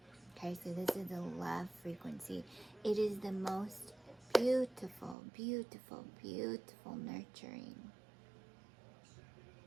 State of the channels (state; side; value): drops out; left; at 5.2 s